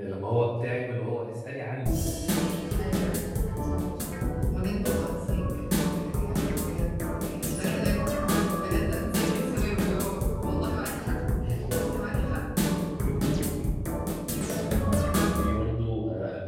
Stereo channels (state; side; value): identical; both; correlation 1.00